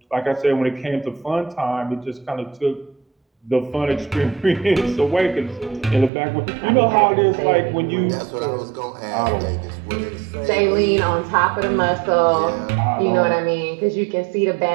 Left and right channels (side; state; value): left; drops out; at 6.1 s